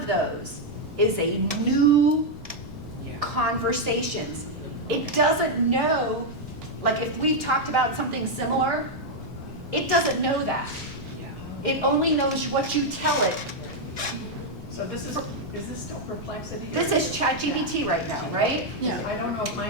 those is a new Yeah. conversations. It doesn't know, like if we've talked about something similar, it doesn't know that. Yeah. It only knows what you tell it. So this is this still Perplexity? This is ChatGPT right now, right? Yeah. I don't know if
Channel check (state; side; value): normal; both; correlation -0.01